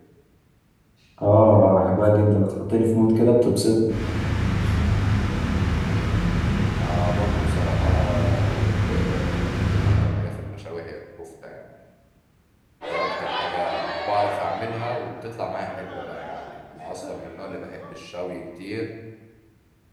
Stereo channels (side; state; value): both; identical; correlation 1.00